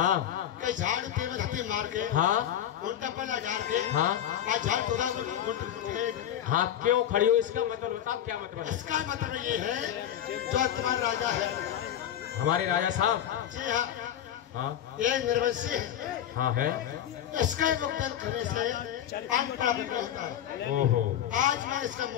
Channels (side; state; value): right; quieter; 10.7 dB